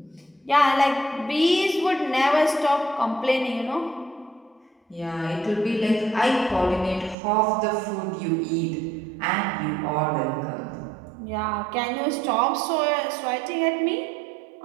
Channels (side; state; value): left; drops out; at 7.2 s